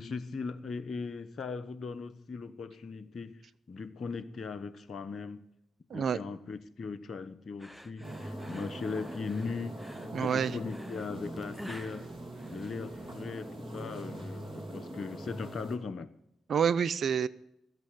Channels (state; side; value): normal; both; correlation 0.77